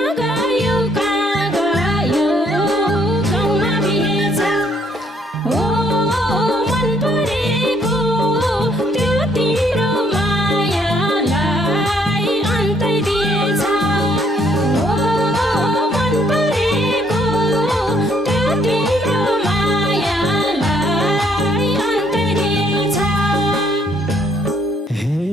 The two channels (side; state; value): both; normal; correlation 0.67